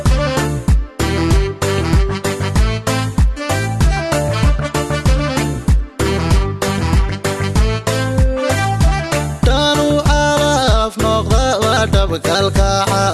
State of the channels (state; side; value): identical; both; correlation 1.00